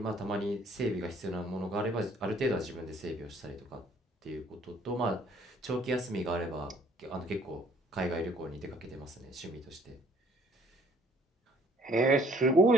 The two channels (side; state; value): both; normal; correlation 0.60